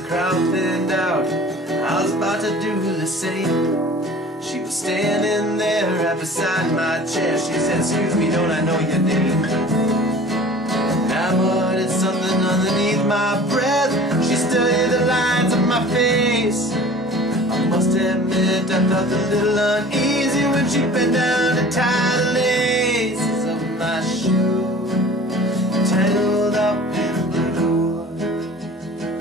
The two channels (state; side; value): normal; both; correlation 0.44